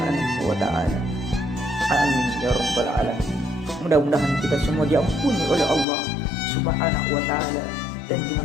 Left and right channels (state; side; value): drops out; right; at 5.9 s